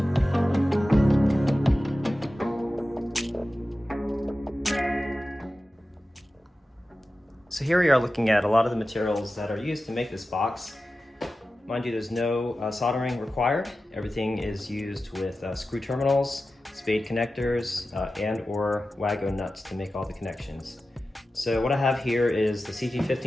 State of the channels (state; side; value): normal; both; correlation 0.94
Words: So here we are looking at a lot of the materials that are used to make this box. Mind you, there's no soldering required. Everything is used with screw terminals, spade connectors, and or Wago nuts to make all the connections. So what I have here is the